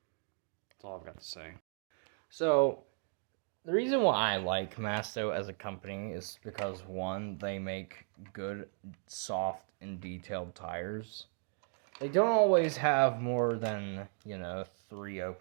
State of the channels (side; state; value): left; silent; 54 dB below the other